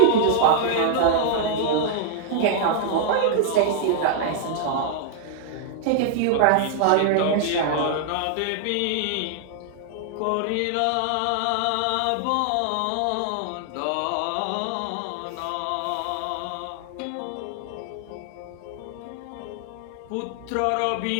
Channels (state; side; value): different; both; correlation -0.01